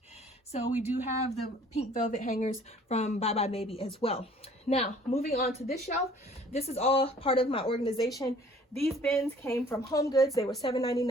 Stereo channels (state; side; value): normal; both; correlation 0.54